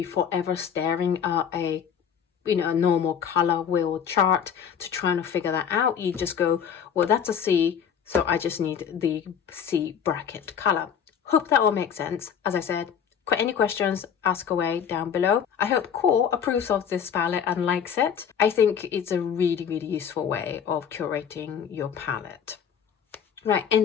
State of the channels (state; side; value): quieter; right; 7.9 dB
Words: forever staring at a normal color wheel chart to try to figure that out. You just go, well, that's a C, so I just need the C bracket color. Hope that all makes sense. As I said, any questions, ask away down below. I hope QoR approves of this palette and likes it. I think it's a really, really useful way of curating your palette. Right, in